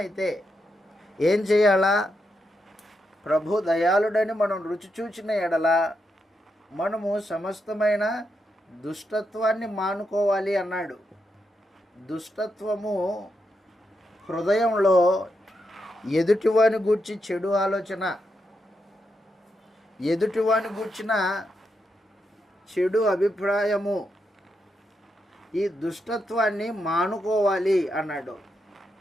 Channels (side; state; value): both; normal; correlation 0.83